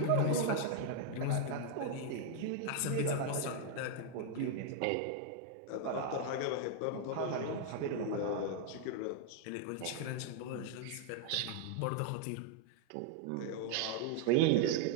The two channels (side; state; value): both; different; correlation 0.00